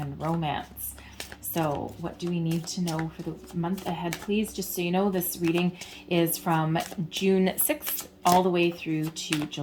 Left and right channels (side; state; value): both; identical; correlation 1.00